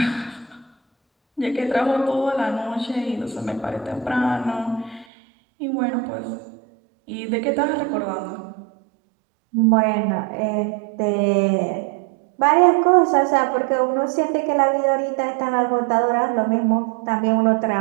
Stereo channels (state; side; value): drops out; left; at 5.1 s